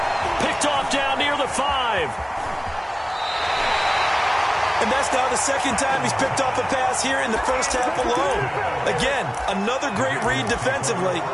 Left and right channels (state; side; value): identical; both; correlation 1.00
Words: Picked off down near the 5. And that's now the second time he's picked off a pass here in the first half alone. Again, another great read defensively,